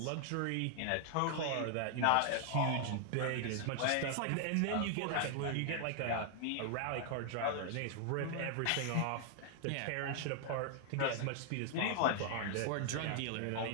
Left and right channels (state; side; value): different; both; correlation 0.00